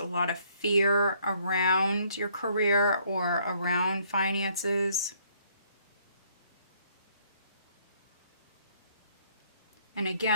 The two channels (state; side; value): inverted; both; correlation -0.65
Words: lot of fear around your career or around finances. And